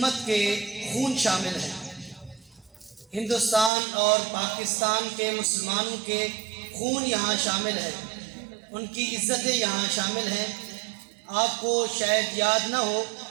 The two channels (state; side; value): drops out; left; at 3.7 s